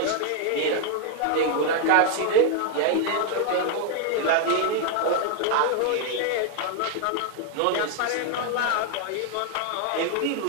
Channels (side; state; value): both; different; correlation 0.00